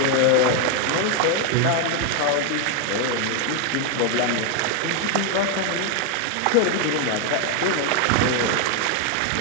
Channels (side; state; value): both; different; correlation 0.01